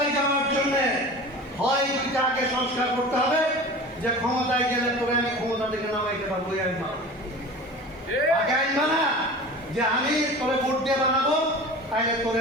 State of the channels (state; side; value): normal; both; correlation 0.36